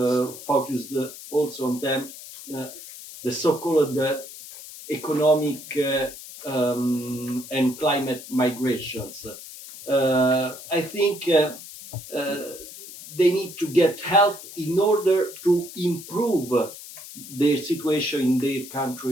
focused also on them, the so-called economic and climate migrations. I think they need to get help in order to improve their situation in their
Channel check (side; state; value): left; noise; hiss, 14 dB below the sound